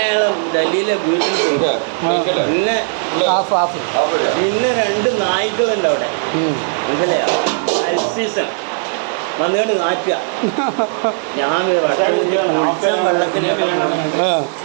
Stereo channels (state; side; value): silent; left; digital silence